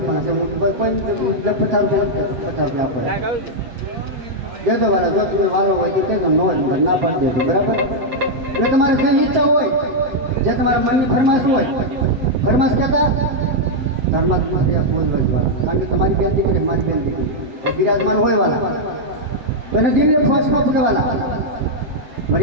છે. કોઈ 50 રૂપિયા આપે દેજો વાલા. જો તમે વાલો હોય તો કહેજો, નો ના પાડી દેજો બરાબર. એટલે તમારે જે ઈચ્છા હોય, જે તમારા મનની ફરમાશ હોય, ફરમાશ કહેતા ધર્માત્મા ફોન કરજો, કારણ કે તમારી બેન દીકરી મારી બેન દીકરી બિરાજમાન હોય વાલા, તો એને દિલને ફોર્સમાં પકડવાના.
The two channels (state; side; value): late; left; 7.7 ms